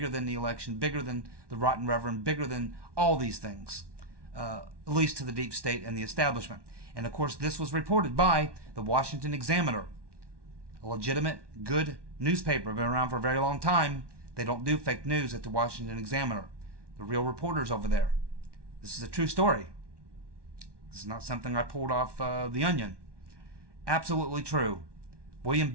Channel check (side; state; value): left; late; 1.2 ms